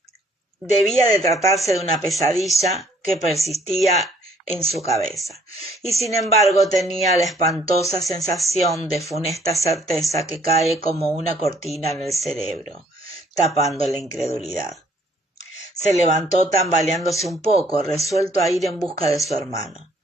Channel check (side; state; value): both; normal; correlation 0.62